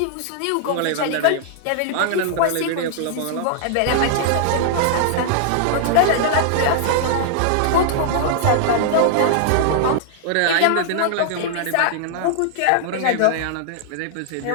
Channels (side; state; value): both; different; correlation -0.01